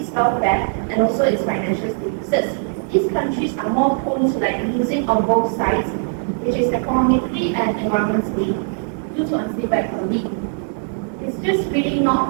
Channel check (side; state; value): left; silent; 66 dB below the other